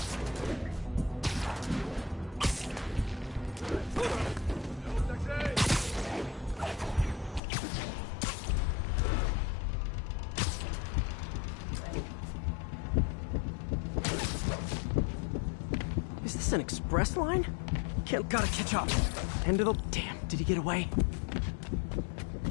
Is this an express line? Gotta catch up. End of the... Damn, did he get away?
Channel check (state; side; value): drops out; right; at 7.4 s